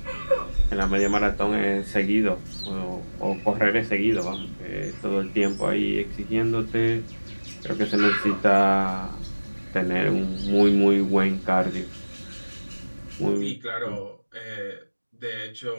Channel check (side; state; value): both; inverted; correlation -1.00